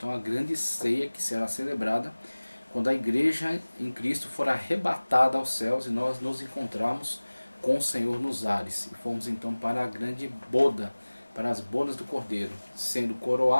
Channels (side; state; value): both; inverted; correlation -1.00